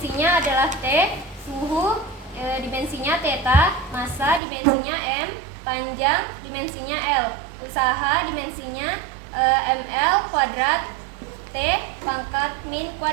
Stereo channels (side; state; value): left; drops out; at 4.4 s